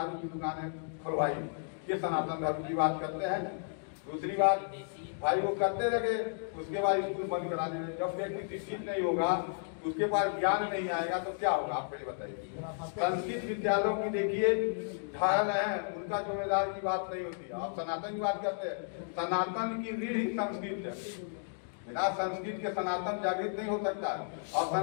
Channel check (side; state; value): right; silent; digital silence